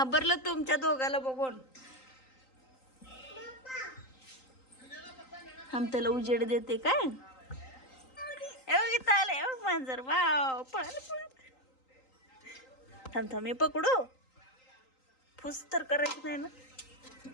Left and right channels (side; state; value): right; late; 3.9 ms